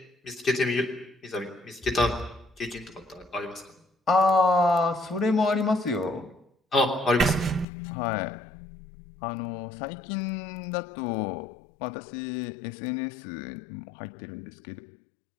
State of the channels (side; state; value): right; drops out; at 7.7 s